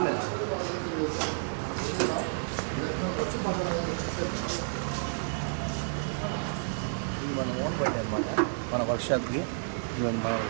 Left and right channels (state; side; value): silent; left; 57 dB below the other